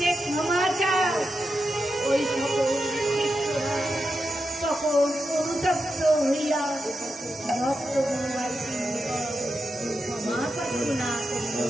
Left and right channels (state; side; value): normal; both; correlation 0.88